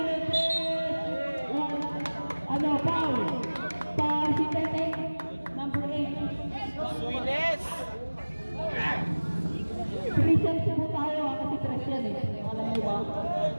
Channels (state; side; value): inverted; both; correlation -1.00